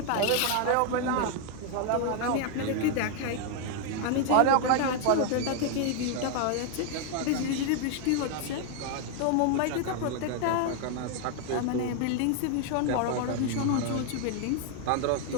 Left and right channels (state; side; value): different; both; correlation 0.00